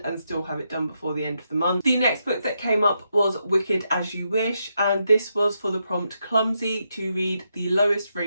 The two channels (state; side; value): inverted; both; correlation -0.82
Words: and still have it done before the end of the month. The next book that came up was Wicked As You Wish, and this was for the prompt Clumsy, to read the lowest